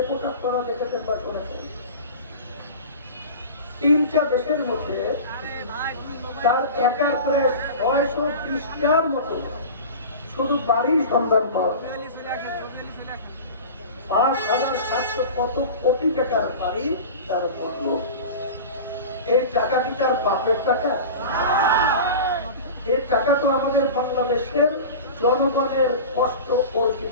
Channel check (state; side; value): inverted; both; correlation -0.33